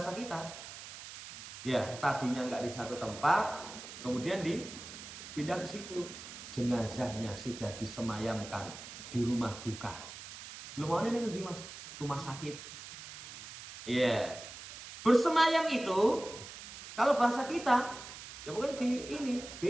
kita, ya tadinya nggak di satu tempat, kemudian dipindah ke situ. Jenazahnya sudah disemayamkan di rumah duka. Lu mau ini di rumah sakit. Iya. Bersemayam itu kalau bahasa kita ya pokoknya di ini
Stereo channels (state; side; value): noise; right; hiss, 12 dB below the sound